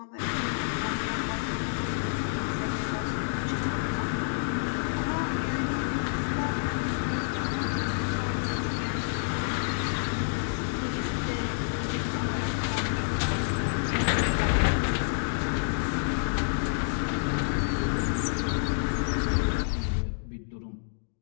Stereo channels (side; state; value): right; silent; digital silence